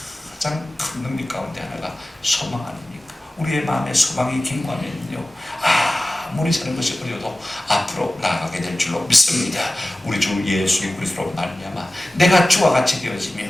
가장 큰 능력 가운데 하나가 소망 아닙니까? 우리의 마음에 소망이 견고하면요, 아무리 사는 것이 어려도 앞으로 나아가게 될 줄로 믿습니다. 우리 주 예수 그리스도로 말미암아 내가 주와 같이 되어지며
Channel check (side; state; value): both; normal; correlation 0.97